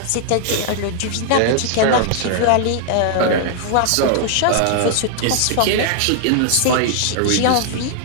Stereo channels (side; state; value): both; different; correlation 0.00